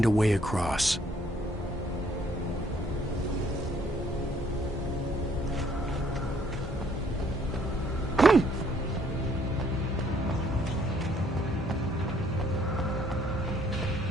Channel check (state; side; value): normal; both; correlation 0.64